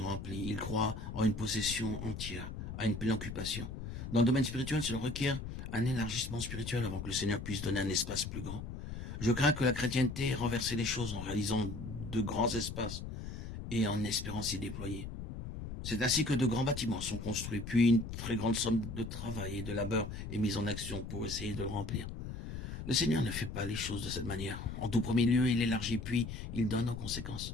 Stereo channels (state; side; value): noise; left; rumble, 8 dB below the sound